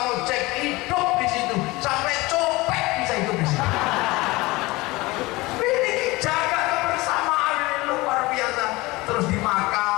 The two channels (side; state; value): right; quieter; 21.5 dB